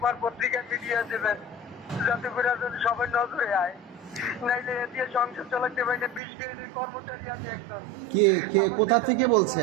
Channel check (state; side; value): drops out; left; at 6.2 s